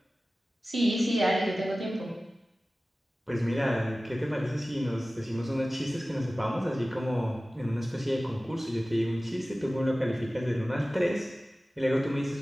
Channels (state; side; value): normal; both; correlation 0.97